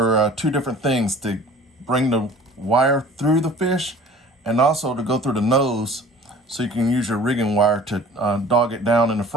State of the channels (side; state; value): both; normal; correlation 0.47